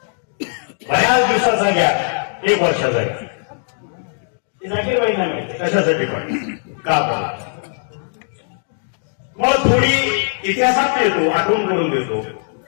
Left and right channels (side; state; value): right; silent; digital silence